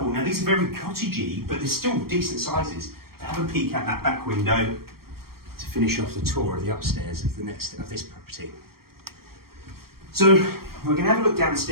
Now these are very cottagey, but they're still decent sizes. Have a peek at that back window to finish off the tour of the upstairs of this property. So we're going to have a look down the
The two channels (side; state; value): left; late; 0.94 ms